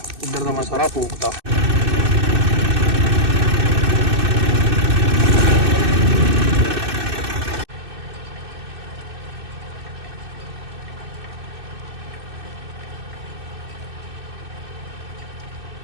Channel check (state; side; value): late; left; 2.6 ms